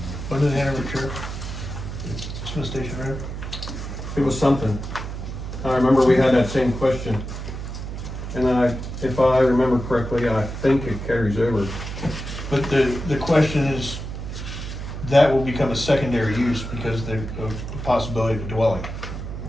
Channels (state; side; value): noise; right; hum, 7 dB below the sound